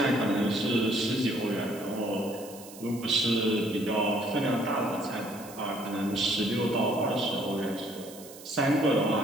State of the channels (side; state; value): right; noise; hiss, 17 dB below the sound